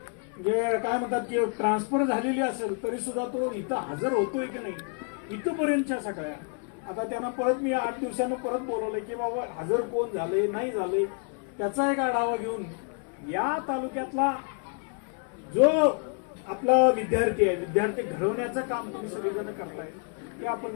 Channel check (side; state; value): right; quieter; 39.8 dB